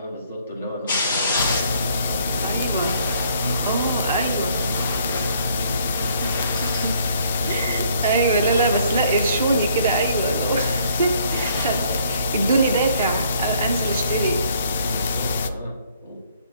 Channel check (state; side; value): inverted; both; correlation -0.64